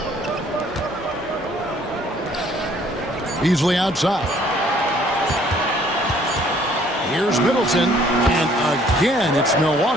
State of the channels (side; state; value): both; normal; correlation 0.60